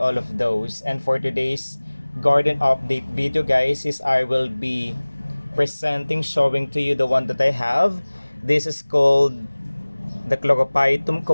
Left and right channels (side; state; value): both; inverted; correlation -1.00